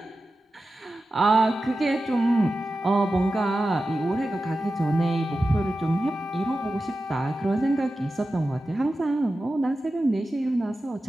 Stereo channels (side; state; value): both; normal; correlation 0.93